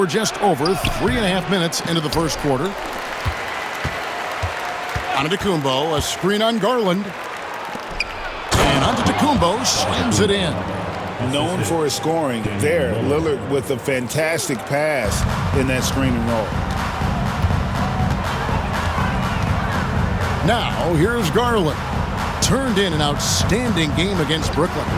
just over 3.5 minutes into the first quarter. Antetokounmpo, a screen on Garland. And Antetokounmpo slams it in. Known for his scoring, there, Lillard with a fantastic pass in that screen and roll. Now, here's Garland. Turned in an outstanding game against Brooklyn.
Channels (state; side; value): identical; both; correlation 1.00